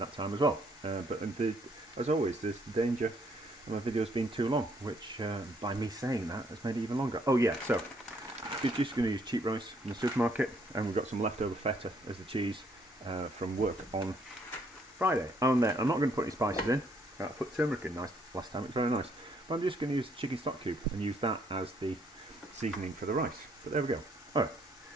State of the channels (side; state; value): both; normal; correlation 0.68